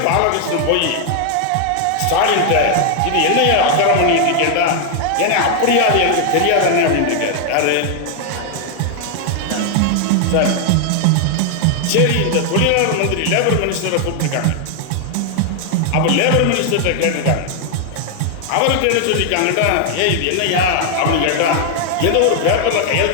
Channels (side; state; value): both; different; correlation 0.00